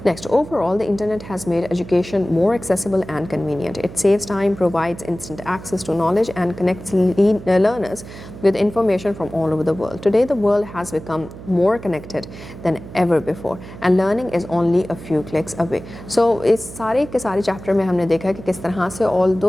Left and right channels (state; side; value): noise; right; hum, 14 dB below the sound